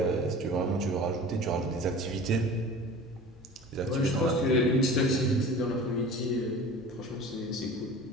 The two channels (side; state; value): both; normal; correlation 0.39